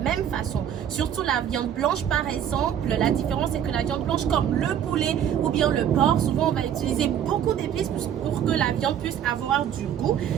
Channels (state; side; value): quieter; left; 9.6 dB